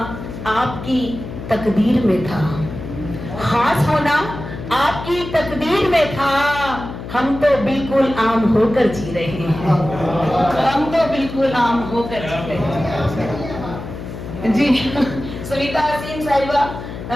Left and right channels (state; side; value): noise; left; hum, 10 dB below the sound